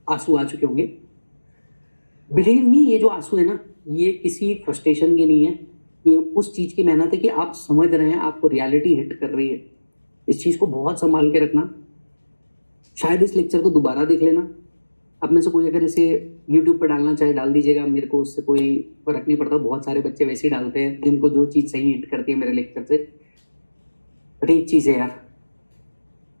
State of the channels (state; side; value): inverted; both; correlation -1.00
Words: आंसू आ चुके होंगे। बिलीव मी, ये जो आंसू है ना ये किसी फ्रस्ट्रेशन की नहीं है, ये उस चीज की मेहनत है कि आप समझ रहे हैं, आपको रियलिटी हिट कर रही है। इस चीज को बहुत संभाल के रखना। शायद इस लेक्चर को दोबारा देख लेना। आप में से कोई अगर इसे यूट्यूब पर डालना चाहे डाल दीजिएगा, मेरे को उससे कोई फर्क नहीं पड़ता। बहुत सारे बच्चे वैसे ही डालते हैं जिनको जो चीज सही हिट करती है मेरे लेक्चर से। बट एक चीज है यार,